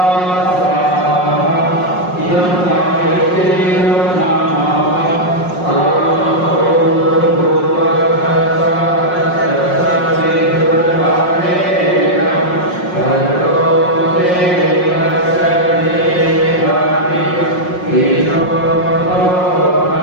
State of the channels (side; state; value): right; late; 5.5 ms